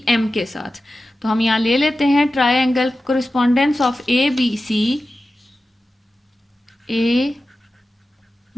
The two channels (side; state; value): both; normal; correlation 0.94